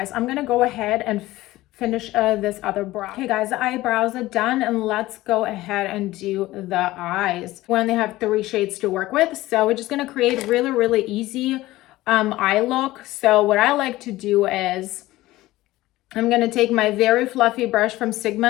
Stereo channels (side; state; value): right; quieter; 17.4 dB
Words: I'm gonna go ahead and finish this other brow. Okay, guys, the eyebrows are done, and let's go ahead and do the eyes. We only have 3 shades to work with, so we're just gonna create really easy eye look. So what I like to do is I'm gonna take my very fluffy brush from Sigma.